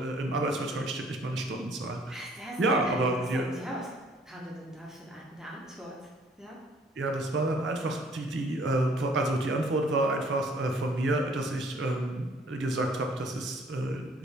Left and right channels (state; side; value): normal; both; correlation 0.59